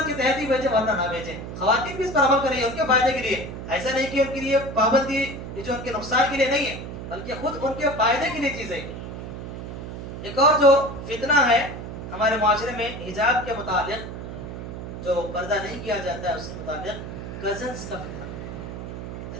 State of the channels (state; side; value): noise; right; hum, 9 dB below the sound